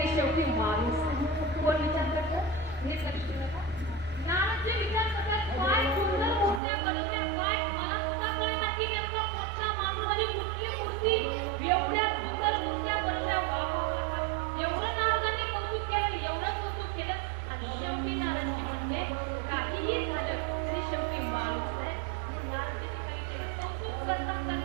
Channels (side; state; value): left; drops out; at 6.6 s